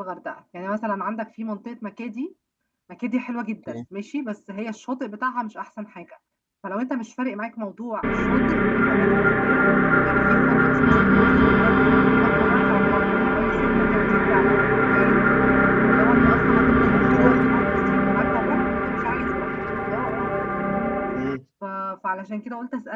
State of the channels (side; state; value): both; identical; correlation 1.00